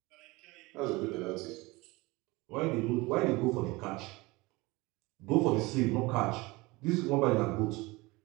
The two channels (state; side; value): quieter; left; 22.9 dB